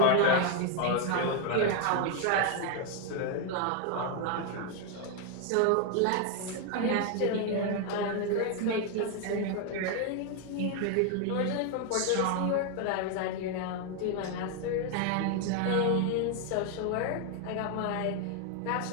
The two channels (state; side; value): different; both; correlation 0.01